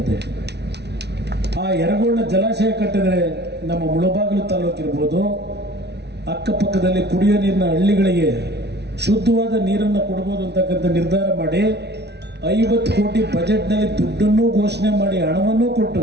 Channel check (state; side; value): late; left; 0.49 ms